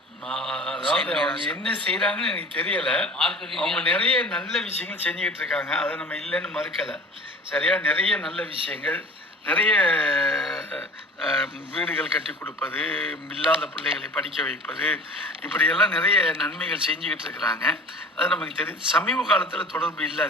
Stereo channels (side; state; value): both; normal; correlation 0.41